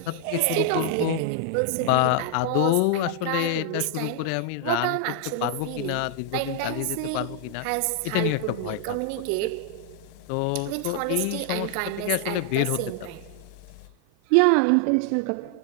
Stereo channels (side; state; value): both; different; correlation 0.00